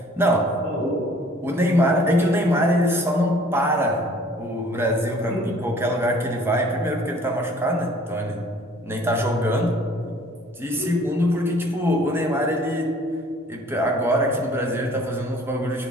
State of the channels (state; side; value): normal; both; correlation 0.54